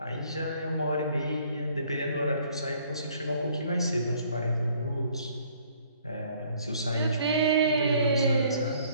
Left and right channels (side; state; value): both; inverted; correlation -0.60